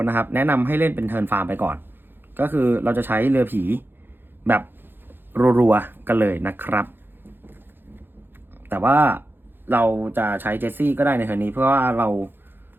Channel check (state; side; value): late; left; 0.099 ms